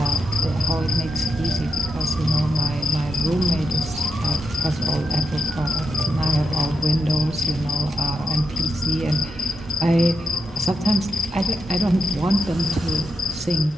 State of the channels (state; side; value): normal; both; correlation 0.85